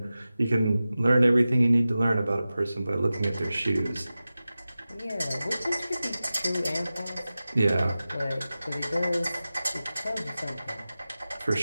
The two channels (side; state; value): both; inverted; correlation -0.95